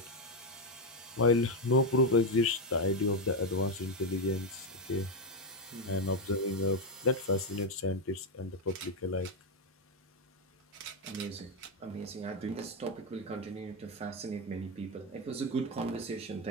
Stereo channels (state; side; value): normal; both; correlation 0.06